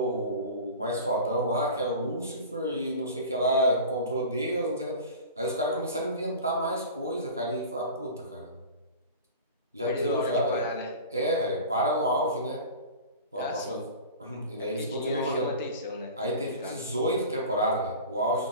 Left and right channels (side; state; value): both; inverted; correlation -0.36